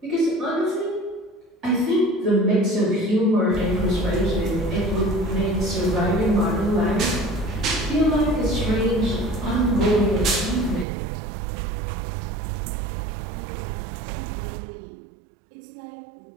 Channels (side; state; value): left; drops out; at 10.9 s